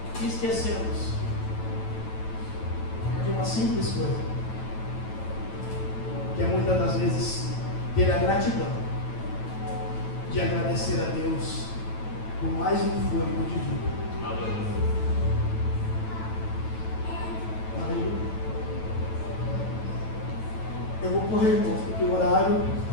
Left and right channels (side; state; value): right; late; 9.1 ms